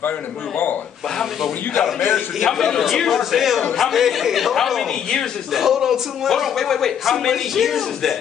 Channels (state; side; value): quieter; right; 8.6 dB